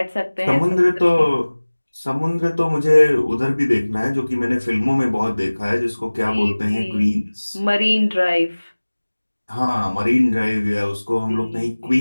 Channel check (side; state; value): both; inverted; correlation -1.00